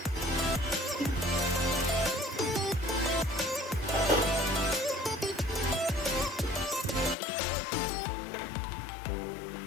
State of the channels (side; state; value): right; drops out; at 7.2 s